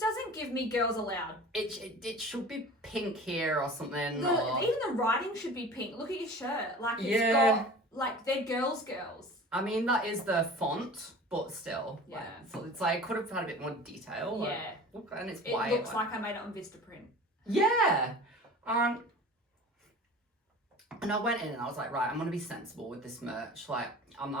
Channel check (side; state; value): both; normal; correlation 0.40